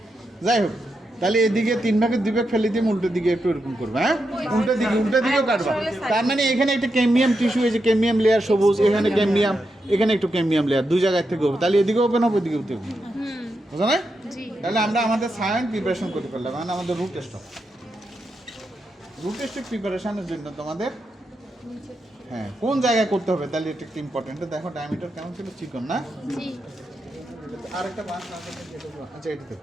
যাই হোক, তাহলে এদিকে 3 ভাগের 2 ভাগ ফেলে দিয়ে উল্টো দিকে একটু এরকম করবে, হ্যাঁ উল্টো দিকেও কাটবা। তার মানে এখানে একটা ক্যামিয়াম টিস্যু, এই যে ক্যামিয়াম লেয়ার সবুজ, এখানে ক্যামিয়াম, এখানে একটু ক্যামিয়াম লেয়ার, 2 জায়গায় থেকে হবে, তাহলে এদিকে ওপেন হবে, এদিকে ওপেন হবে, বুঝো না? তাহলে আমরা আমাদের সায়েন্স প্রিপারেশন করতে পারলাম, মানে আমাদের রুট টেস্ট প্রিপারেশনের জন্য তোমাদের হ্যাঁ কোন জায়গায় করতে হবে, তাহলে এটা একটু ইম্পর্টেন্ট। দেখো ডায়ামিটার কেমন ছিল, চিকন না? আরেকটা বাঁশ আছে, আচ্ছা এটা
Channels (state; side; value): normal; both; correlation 0.85